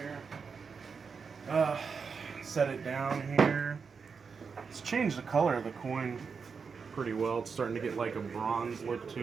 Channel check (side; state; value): left; quieter; 5.6 dB